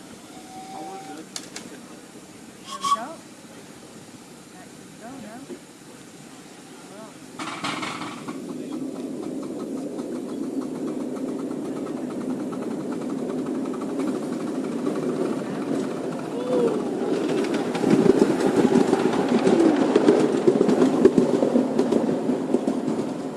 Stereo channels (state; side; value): identical; both; correlation 1.00